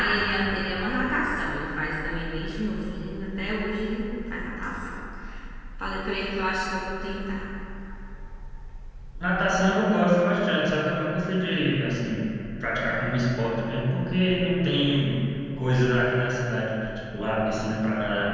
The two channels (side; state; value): both; identical; correlation 1.00